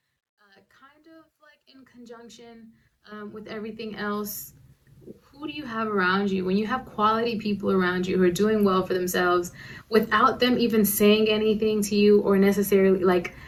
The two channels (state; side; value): identical; both; correlation 1.00